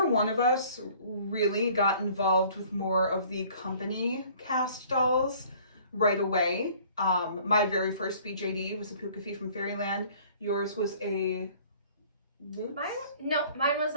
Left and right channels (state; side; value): inverted; both; correlation -0.53